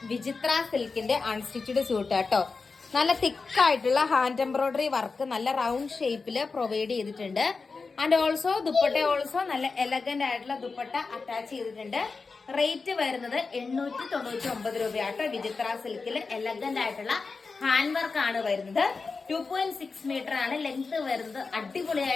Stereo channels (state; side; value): quieter; right; 4.4 dB